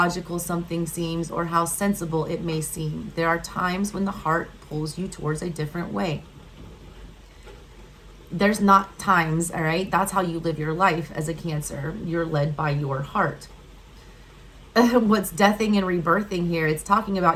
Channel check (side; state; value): both; identical; correlation 1.00